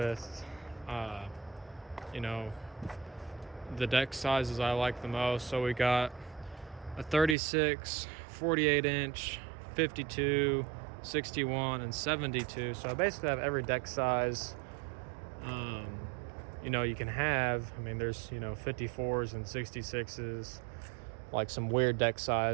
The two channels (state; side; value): drops out; left; at 7.4 s